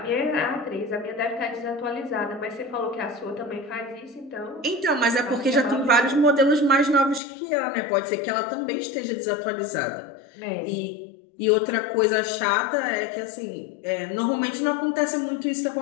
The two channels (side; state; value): right; drops out; at 7.2 s